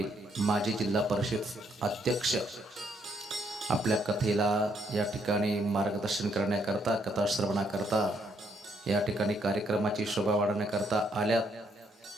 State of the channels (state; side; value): normal; both; correlation 0.72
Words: माजी जिल्हा परिषद अध्यक्ष, आपल्या कथेला या ठिकाणी मार्गदर्शन करण्याकरता, कथा श्रवणाकरता, या ठिकाणी कार्यक्रमाची शोभा वाढवण्याकरता आल्यात.